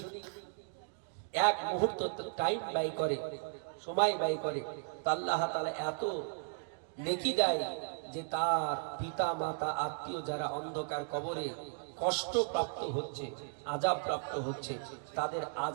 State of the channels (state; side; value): silent; left; digital silence